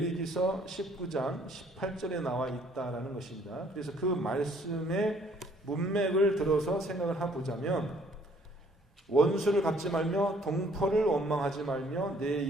19장 18절에 나와 있다라는 것입니다. 그래서 그 말씀의 문맥을 들어서 생각을 해보자면 원수를 갚지 말며 동포를 원망하지 말며 내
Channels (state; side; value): normal; both; correlation 0.62